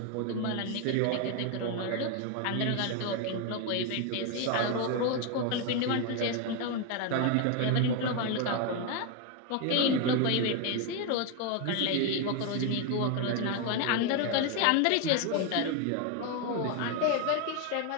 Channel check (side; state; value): both; different; correlation 0.01